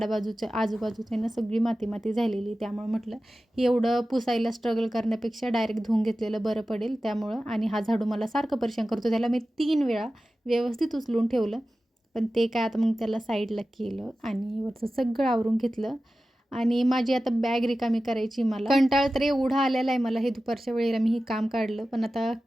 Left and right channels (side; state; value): both; normal; correlation 0.95